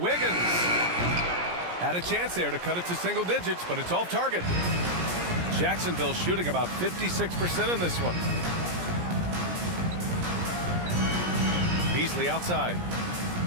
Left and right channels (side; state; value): left; late; 17 ms